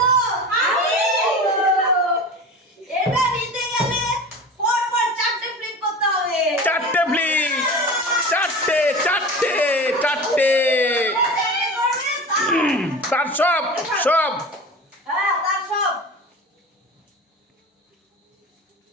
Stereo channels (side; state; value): both; normal; correlation 0.33